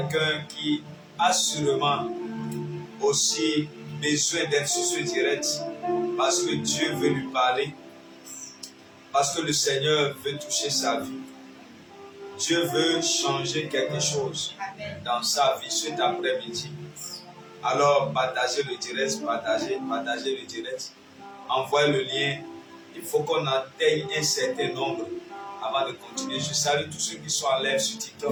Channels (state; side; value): identical; both; correlation 1.00